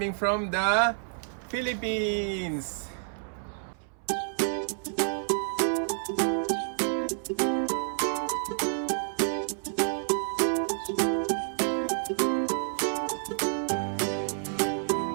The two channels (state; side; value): silent; left; 58 dB below the other